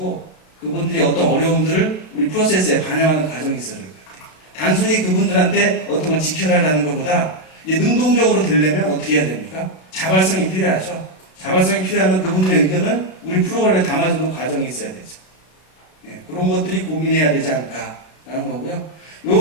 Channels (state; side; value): late; right; 32 ms